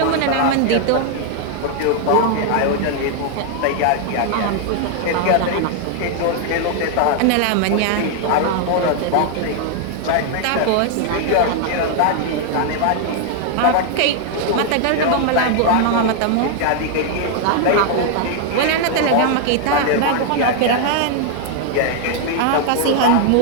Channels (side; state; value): both; different; correlation 0.00